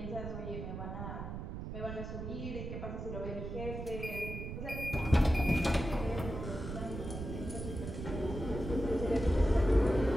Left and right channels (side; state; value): right; noise; rumble, 6 dB below the sound